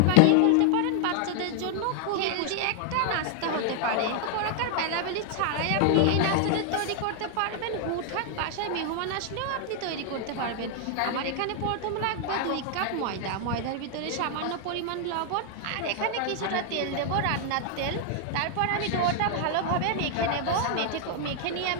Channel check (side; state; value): both; different; correlation 0.00